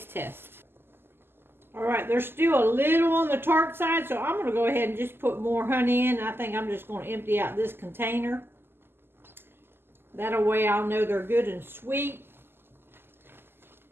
test. All right, they're still a little on the tart side, so I'm going to go ahead and just put more honey in. I think I'm just going to empty out this container. That way I'll know they're good and sweet.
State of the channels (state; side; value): late; left; 0.11 ms